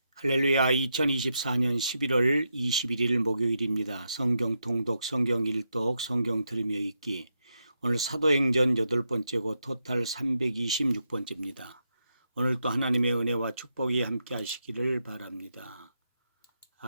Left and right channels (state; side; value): inverted; both; correlation -0.83